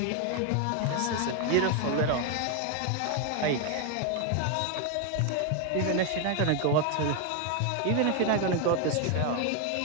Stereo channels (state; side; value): different; both; correlation 0.01